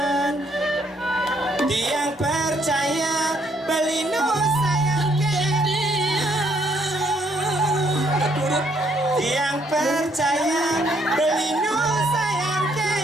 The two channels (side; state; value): both; normal; correlation 0.69